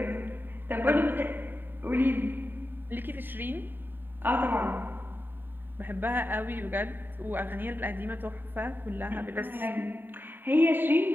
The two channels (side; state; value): left; late; 0.093 ms